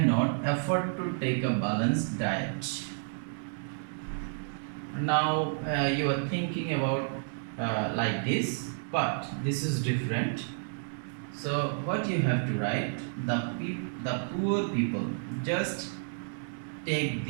afford to take a balanced diet. Now you are thinking about like this, but this is different. So what you have to write, the poor people, just take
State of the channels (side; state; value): left; silent; digital silence